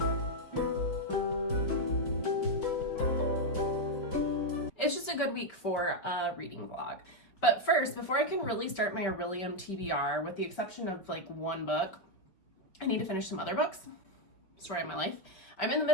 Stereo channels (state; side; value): late; right; 5.2 ms